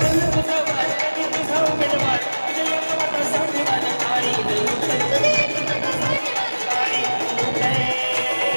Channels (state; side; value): inverted; both; correlation -1.00